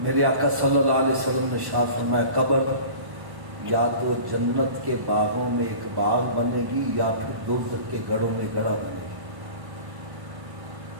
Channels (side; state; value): left; late; 1.1 ms